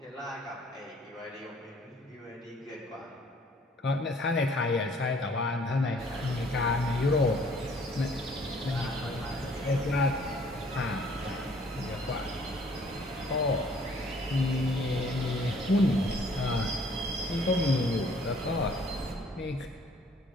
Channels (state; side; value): normal; both; correlation 0.59